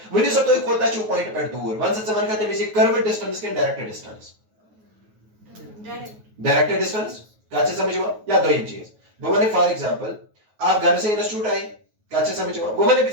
वनी सो तुई कोता छु पॉइंट पे दूर वन से मन कहते हैं कर्व डिस्टेंस के डायरेक्ट डिस्टेंस डायरेक्ट डिस्टेंस काचे समझ में या दो चीज वो मैंने फॉर एग्जांपल आप घर से इंस्टीट्यूट आए काचे समझ में वो मैंने भी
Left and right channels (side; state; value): left; late; 9.4 ms